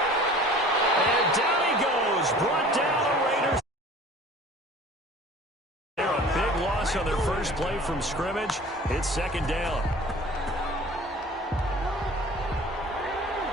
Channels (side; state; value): both; normal; correlation 0.45